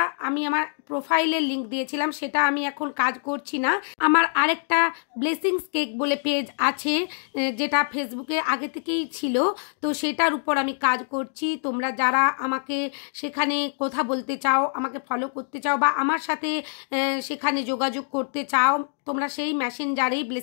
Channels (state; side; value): silent; right; digital silence